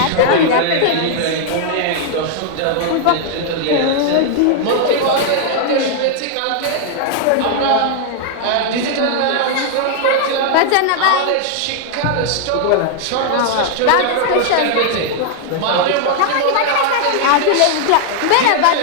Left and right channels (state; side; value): different; both; correlation 0.00